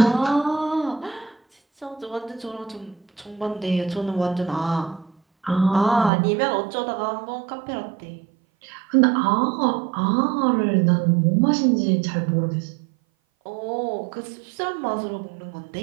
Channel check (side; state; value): left; drops out; at 6.1 s